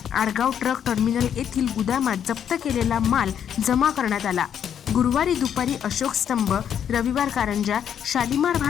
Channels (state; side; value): quieter; right; 8.8 dB